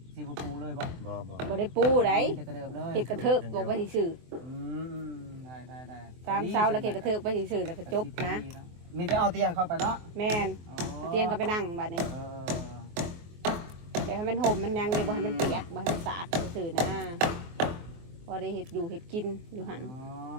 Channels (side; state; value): left; late; 23 ms